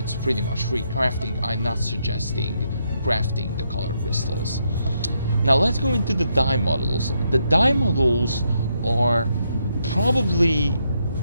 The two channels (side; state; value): both; inverted; correlation -0.78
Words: pretty much free crafting. I'm not suggesting crafting the color crystals. Now let's go into the dye models. The dye models are probably